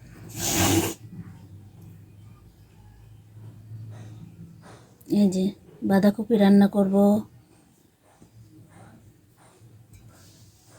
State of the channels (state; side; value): identical; both; correlation 1.00